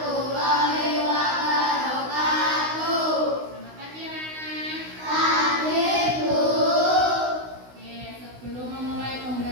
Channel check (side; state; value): left; late; 16 ms